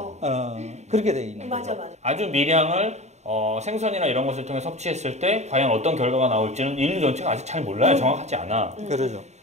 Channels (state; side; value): late; left; 0.33 ms